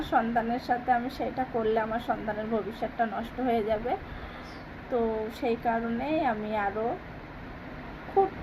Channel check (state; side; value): identical; both; correlation 1.00